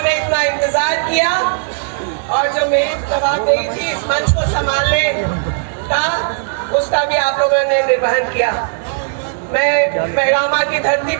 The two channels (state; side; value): silent; left; digital silence